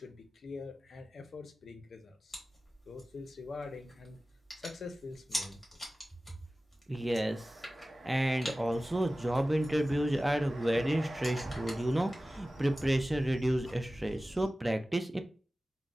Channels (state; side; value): normal; both; correlation 0.96